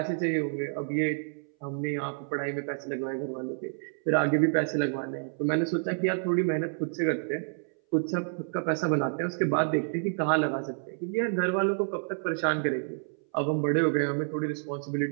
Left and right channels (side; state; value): left; silent; 59 dB below the other